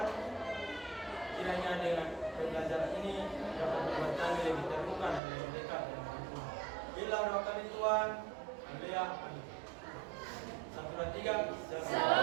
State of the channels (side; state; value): left; drops out; at 5.2 s